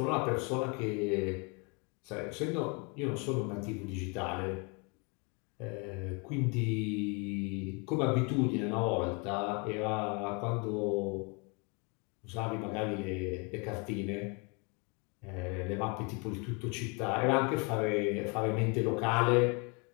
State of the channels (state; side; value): quieter; right; 32.0 dB